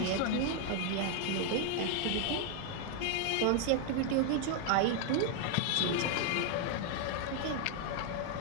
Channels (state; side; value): different; both; correlation 0.00